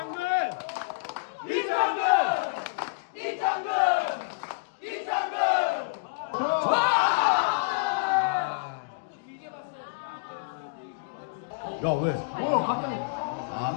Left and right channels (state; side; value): quieter; right; 33.2 dB